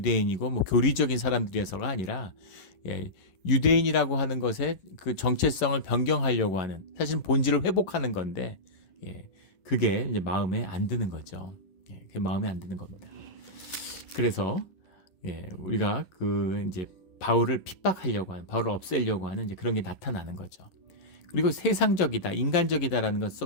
뭐 교리적인 사람들이어서가 아니라 유대인이라고 하는 것의 그 정체성을 변경하려고 하는 사실은 본질을 회복하는 건데 그게 이제 마음에 안 드는 거죠. 그게 마음에 안 드는 겁니다. 그래서 우리가 그 이제 바울을 핍박하려고 하는, 바울을 없애려고 하는 이제 그런 게 나타나는 거죠. 그리고 세상적이다, 인간적이다라는 것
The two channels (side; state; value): right; late; 11 ms